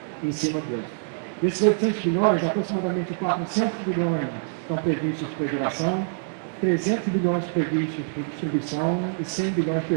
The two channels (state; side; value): silent; left; digital silence